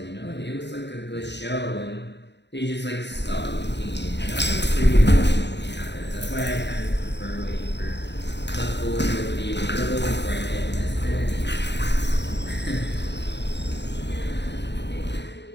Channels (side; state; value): right; late; 0.50 ms